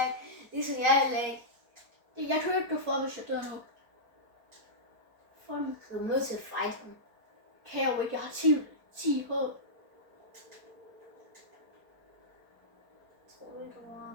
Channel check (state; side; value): late; left; 4.5 ms